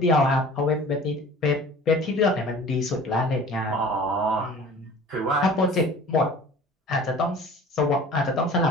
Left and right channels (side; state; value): both; normal; correlation 0.44